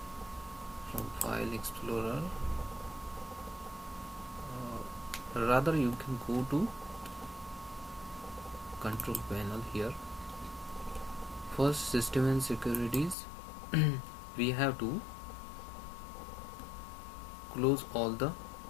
from File Explorer. Rather you can go to Control Panel. Here first, System and Securities. We have to close all the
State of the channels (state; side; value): drops out; right; at 13.2 s